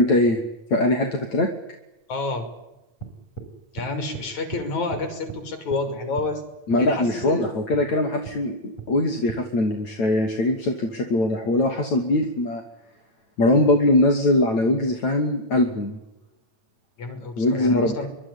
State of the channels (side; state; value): right; late; 9.2 ms